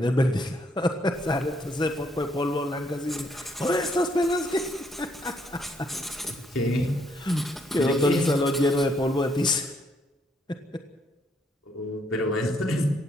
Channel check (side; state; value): both; normal; correlation 0.71